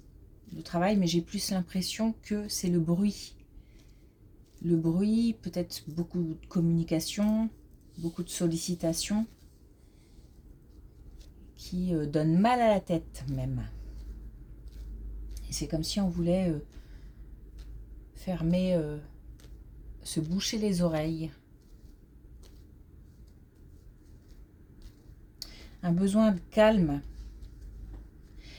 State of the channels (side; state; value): both; identical; correlation 1.00